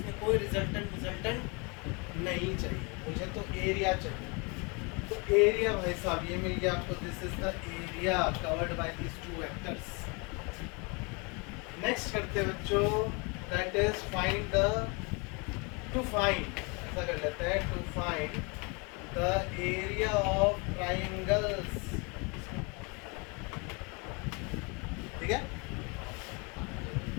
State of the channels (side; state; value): right; quieter; 30.8 dB